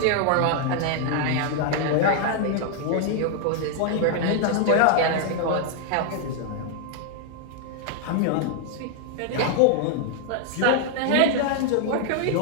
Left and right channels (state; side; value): different; both; correlation 0.00